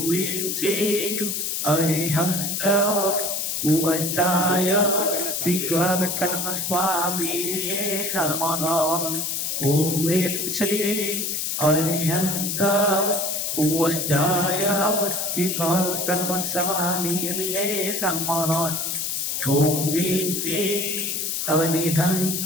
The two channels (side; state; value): left; noise; hiss, 1 dB below the sound